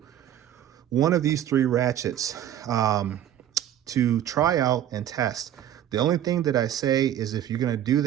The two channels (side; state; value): left; quieter; 11.1 dB